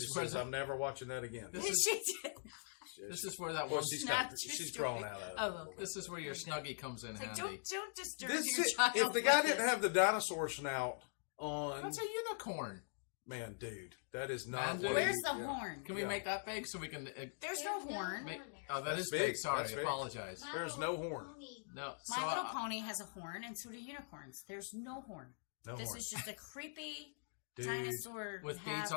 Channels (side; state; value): right; silent; digital silence